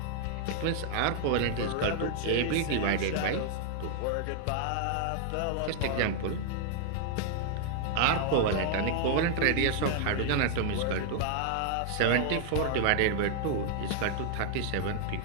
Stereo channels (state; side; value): different; both; correlation 0.00